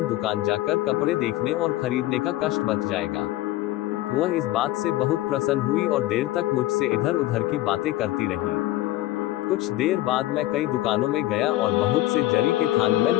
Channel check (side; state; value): right; quieter; 16.0 dB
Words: जाकर कपड़े देखने और खरीदने का कष्ट बच जाएगा। वह इस बात से बहुत प्रसन्न हुई और देर तक मुझसे इधर उधर की बातें करती रही। कुछ देर बाद मैं कई दुकानों में गया और बहुत से जरी के थान